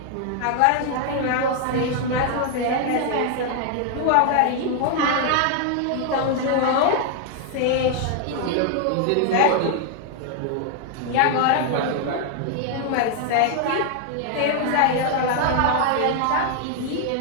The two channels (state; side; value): different; both; correlation 0.00